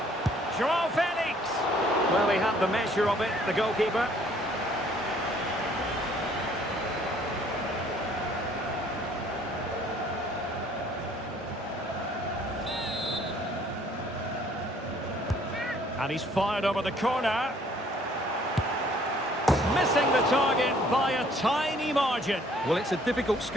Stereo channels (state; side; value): normal; both; correlation 0.60